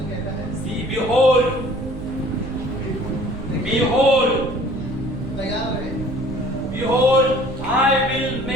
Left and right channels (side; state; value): right; noise; rumble, 12 dB below the sound